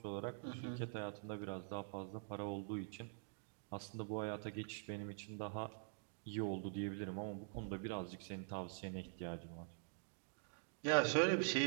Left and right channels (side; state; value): left; silent; digital silence